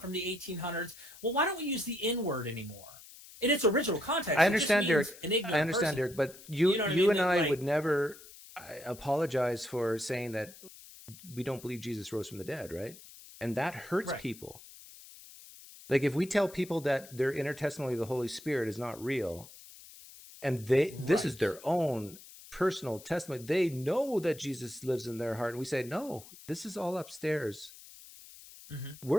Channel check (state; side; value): noise; left; hiss, 19 dB below the sound